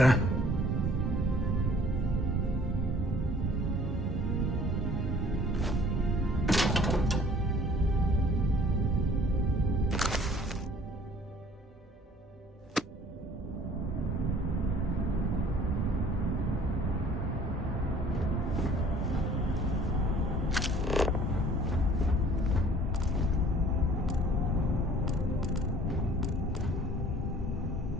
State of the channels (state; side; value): normal; both; correlation 0.53